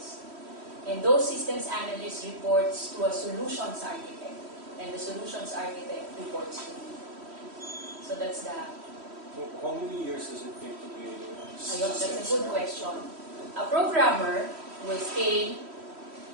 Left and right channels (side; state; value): left; late; 3.1 ms